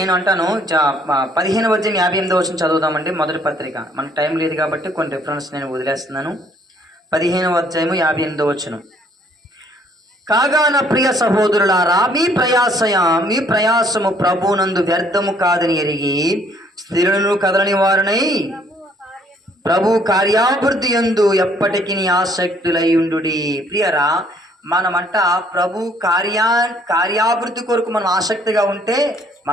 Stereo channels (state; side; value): normal; both; correlation 0.63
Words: అంటాను 15వ అధ్యాయం 58వ వచనం చదువుదామండి. మొదటి పత్రిక, మనకు టైం లేదు కాబట్టి కొన్ని రిఫరెన్స్ నేను వదిలేస్తున్నాను. 15వ అధ్యాయము 58వ వచనం. కాగా నా ప్రియ సహోదరులారా, మీ ప్రయాసము ప్రభువునందు వ్యర్థము కాదని ఎరిగి స్థిరులను కదలని వారినై ప్రభు కార్యాభివృద్ధి యందు ఎప్పటికీ ఆసక్తులై ఉండుడి. ప్రియరా, మనమంట ప్రభు కార్యాభివృద్ధి కొరకు మనం ఆసక్తిగా ఉంటే